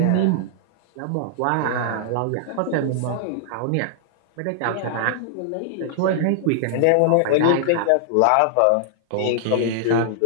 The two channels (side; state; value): both; different; correlation -0.01